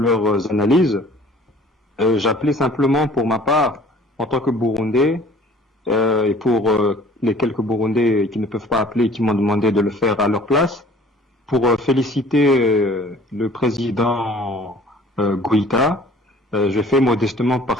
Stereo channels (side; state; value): both; normal; correlation 0.51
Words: analyses. J'appelais simplement pour ma part, en tant que Burundais, et pour les quelques Burundais qui ne peuvent pas appeler et qui m'ont demandé de le faire à leur place, pour féliciter le président Goïta. Je fais modestement